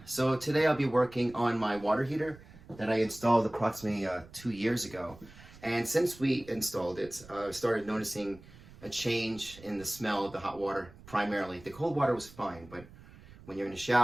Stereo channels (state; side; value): noise; right; rumble, 20 dB below the sound